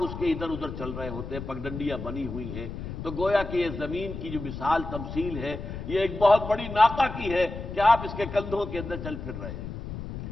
اس کے ادھر ادھر چل رہے ہوتے ہیں، پگڈنڈیاں بنی ہوئی ہیں۔ تو گویا کہ یہ زمین کی جو مثال تمثیل ہے، یہ ایک بہت بڑی ناقہ کی ہے کہ آپ اس کے کندھوں کے اندر چل پھر رہے ہیں۔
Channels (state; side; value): noise; left; rumble, 8 dB below the sound